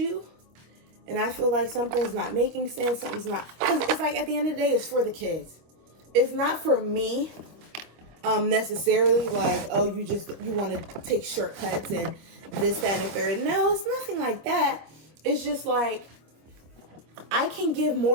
and I feel like something's not making sense, something's not, because it's like at the end of the day, it's for the kids. It's not for me necessarily like, oh, you want to take shortcuts and this, that, and the third. No, it's nothing like that. It's just like I can give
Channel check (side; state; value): left; late; 25 ms